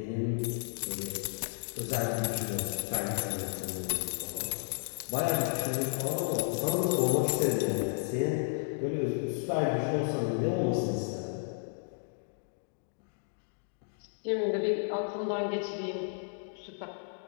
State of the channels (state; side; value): silent; right; digital silence